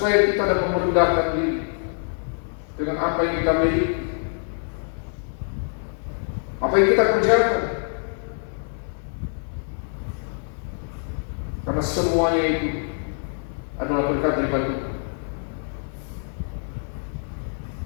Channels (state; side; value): silent; right; 61 dB below the other